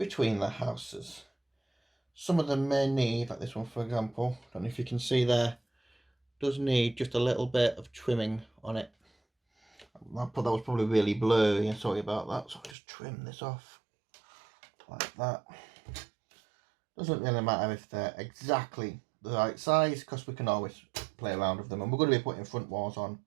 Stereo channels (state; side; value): drops out; left; at 12.8 s